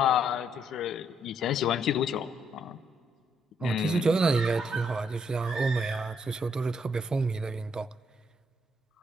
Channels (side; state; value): both; normal; correlation 0.73